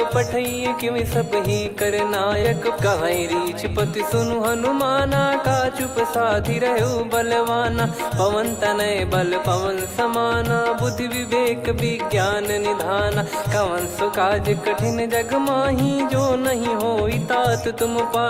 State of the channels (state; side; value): identical; both; correlation 1.00